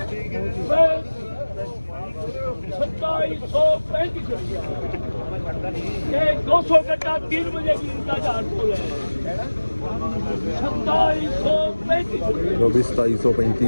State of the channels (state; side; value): inverted; both; correlation -1.00